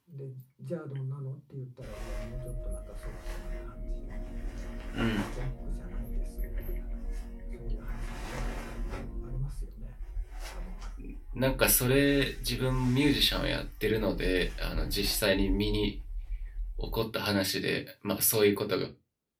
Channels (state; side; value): identical; both; correlation 1.00